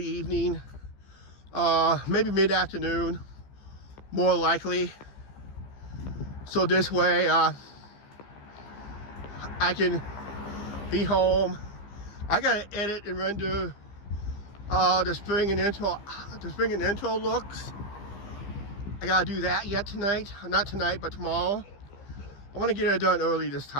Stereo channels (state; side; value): late; right; 15 ms